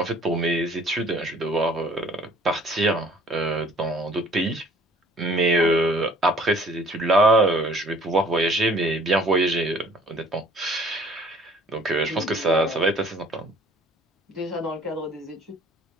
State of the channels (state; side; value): normal; both; correlation 0.55